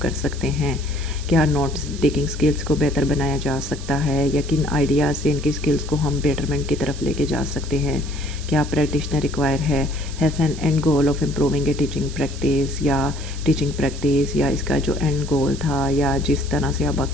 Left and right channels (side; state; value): right; noise; hiss, 15 dB below the sound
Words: कर सकते हैं, क्या नोट्स टेकिंग स्किल्स को बेहतर बनाया जा सकता है, या किन आइडियाज़ से इनकी स्किल्स को हम बेटरमेंट की तरफ लेके जा सकते हैं, क्या practitioner require has an and goal of improving A teaching practice, या इसका जो एंड गोल था या जिस तरह से आप